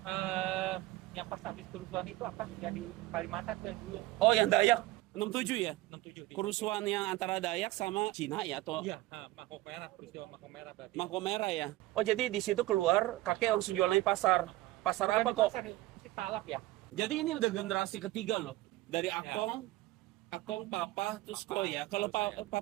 Yang pas habis kerusuhan itu akan jadi Kalimantan tuh yang dulu. Oh yang Dayak? 67 ya? 67. Kerusuhan yang antara Dayak sama Cina ya? Atau Iya, Mako Merah, peristiwa Mako Merah berarti. Mako Merah ya? Oh jadi di situ keluar kakek langsung jualan di pasar. Pasar apa kok? Pasar si Talap ya. Jadi ini udah generasi ketiga loh. Dari Akong, Papa, terus kok ya. Kalau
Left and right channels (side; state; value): left; quieter; 18.1 dB